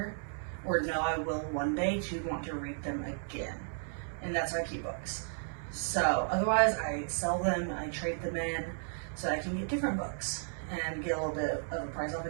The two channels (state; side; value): silent; left; 55 dB below the other